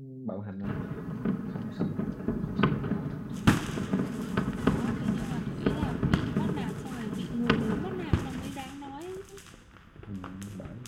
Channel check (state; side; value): identical; both; correlation 1.00